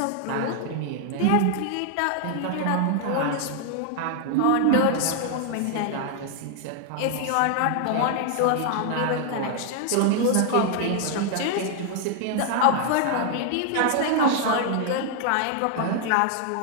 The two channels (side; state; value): both; different; correlation 0.00